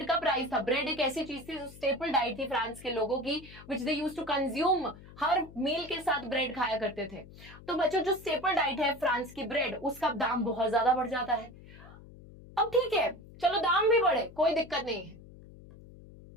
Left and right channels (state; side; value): noise; left; hum, 19 dB below the sound